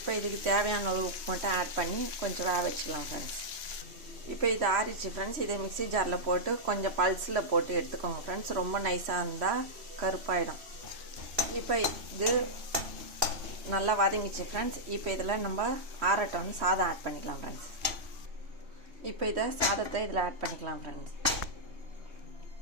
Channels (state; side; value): late; left; 3.1 ms